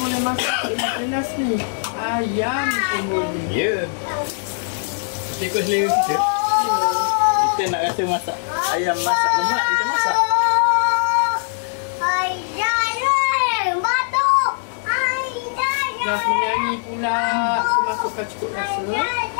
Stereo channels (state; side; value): silent; right; digital silence